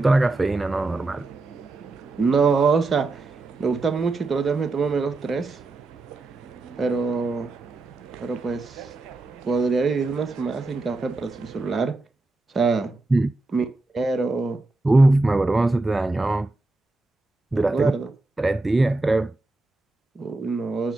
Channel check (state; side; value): quieter; left; 3.1 dB